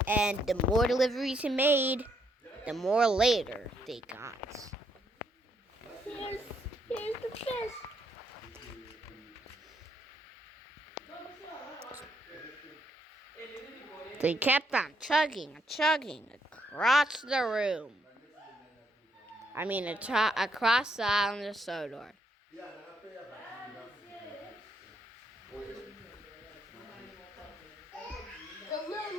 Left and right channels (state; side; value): normal; both; correlation 0.74